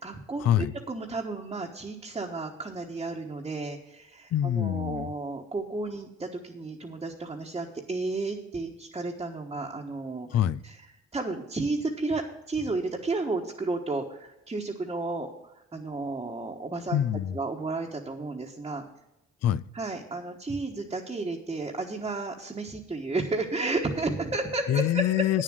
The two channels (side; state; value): both; normal; correlation 0.49